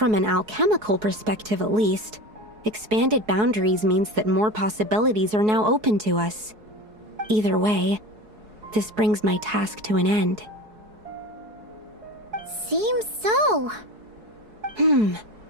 an alchemical perspective at least, expanded boundaries means that more possibilities are now open to us. Either way, this brings my task to an end. Seems so.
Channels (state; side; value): late; left; 4.7 ms